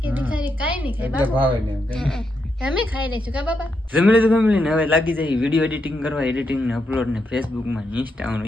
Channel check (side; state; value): both; normal; correlation 0.82